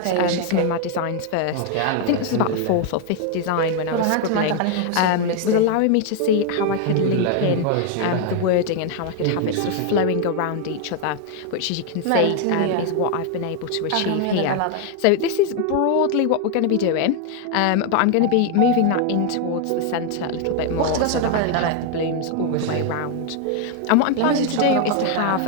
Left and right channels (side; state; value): both; different; correlation 0.00